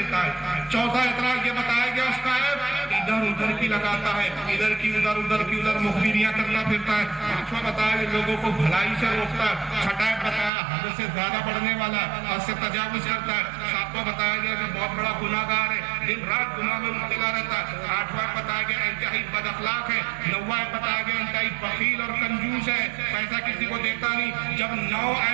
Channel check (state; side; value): drops out; left; at 10.5 s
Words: ہے۔ چوتھا اعتراض یہ بتایا گیا اس کا عیب ادھر ادھر کی لگاتا ہے، ادھر کی ادھر مخبریاں کرتا پھرتا ہے۔ پانچواں بتایا کہ لوگوں کو بھلائی سے روکتا ہے۔ چھٹا عیب بتایا حد سے زیادہ بڑھنے والا، حد سے تجاوز کرتا ہے۔ ساتواں بتایا گیا کہ بہت بڑا گناہ گار ہے، دن رات گناہ میں مبتلا رہتا ہے۔ آٹھواں بتایا گیا انتہائی بد اخلاق ہے۔ نواں بتایا گیا انتہائی بخیل اور کنجوس ہے، پیسہ کسی کو دیتا نہیں۔ جب 9